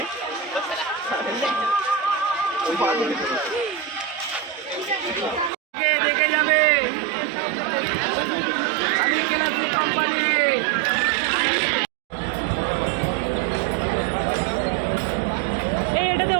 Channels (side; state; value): left; drops out; at 5.5 s